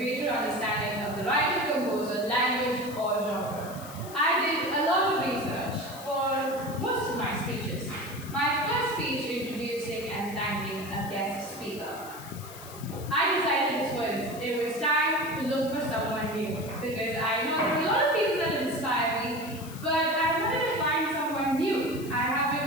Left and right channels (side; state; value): left; noise; hiss, 16 dB below the sound